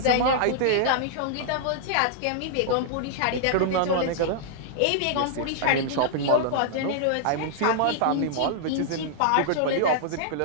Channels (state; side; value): different; both; correlation -0.01